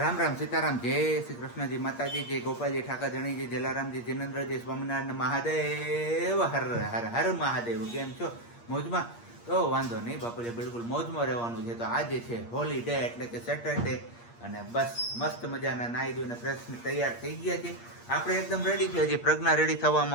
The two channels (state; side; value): late; right; 8.5 ms